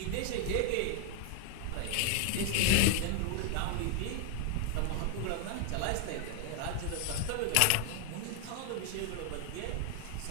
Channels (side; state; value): both; different; correlation 0.00